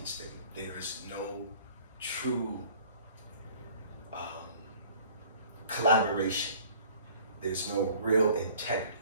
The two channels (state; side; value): inverted; both; correlation -0.51